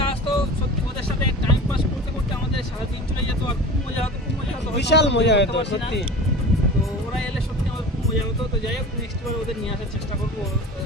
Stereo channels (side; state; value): both; normal; correlation 0.35